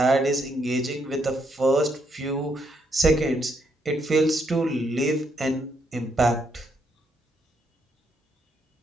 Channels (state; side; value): normal; both; correlation 0.75